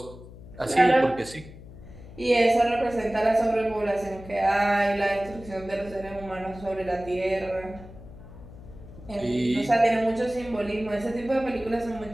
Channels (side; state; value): left; noise; hum, 17 dB below the sound